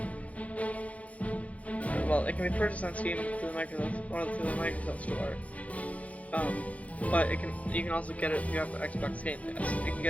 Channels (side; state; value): right; late; 0.067 ms